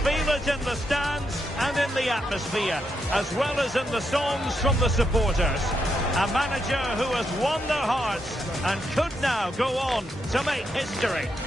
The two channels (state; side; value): normal; both; correlation 0.81